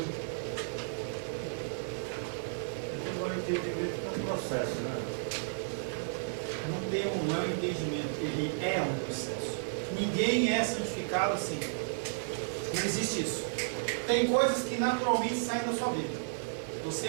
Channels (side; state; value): left; silent; 56 dB below the other